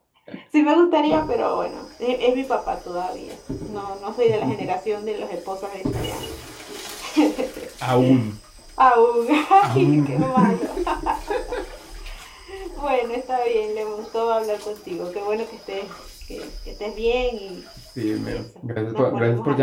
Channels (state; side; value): identical; both; correlation 1.00